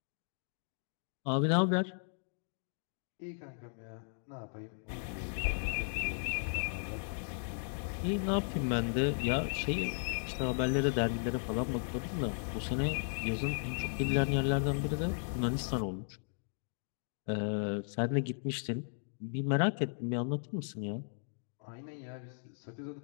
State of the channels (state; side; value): silent; right; digital silence